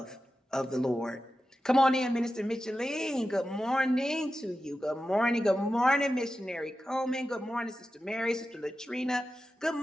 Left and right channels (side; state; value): both; normal; correlation 0.92